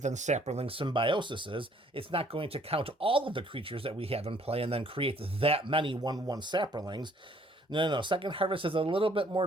than Saproling Symbiosis is. It's not going to count all of the creatures that we have in play and then create that many 1/1 Saprolings. No. Second Harvest is a little bit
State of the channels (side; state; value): both; normal; correlation 0.61